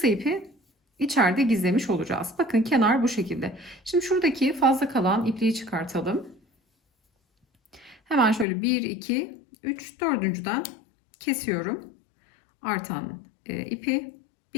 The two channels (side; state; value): right; drops out; at 8.5 s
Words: ipi içeride gizlemiş olacağız. Bakın kenar bu şekilde. Şimdi şuradaki fazla kalan ipliği çıkartalım. Hemen şöyle 1, 2, 3, dördüncüden kesiyorum. Artan ipi